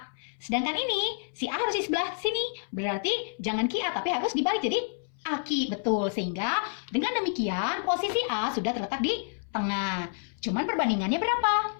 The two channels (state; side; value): silent; right; 59 dB below the other